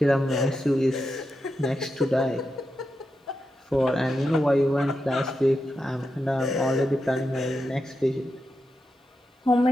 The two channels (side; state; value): both; normal; correlation 0.88